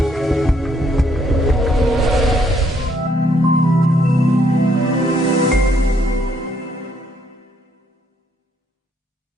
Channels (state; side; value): normal; both; correlation 0.69